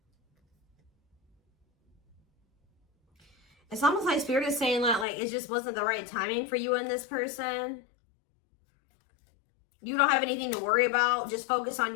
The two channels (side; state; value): right; drops out; at 5.1 s